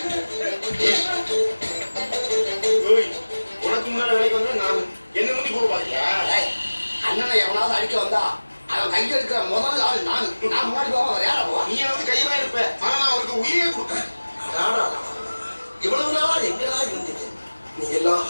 உனக்கு முன்னால வேலைக்கு வந்தா நான் என்ன முந்தி போக பாத்தியா? அண்ணனை எவனாவது அடிக்க வந்தா அவன் கையில் இருக்கிற முதல் ஆள் நான். நான் முன்னாடி போவான். வேற போவா? நீ வந்து கையெல்லாம் இருப்ப. ஆனா நான் அவருக்கு உயிரே கொடுப்பேன். இவ்வளவு நாள் எங்கடா இருந்தீங்க? நீ எல்லாம்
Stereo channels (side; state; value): both; inverted; correlation -1.00